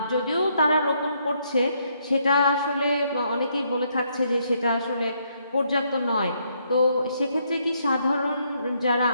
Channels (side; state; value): both; inverted; correlation -0.73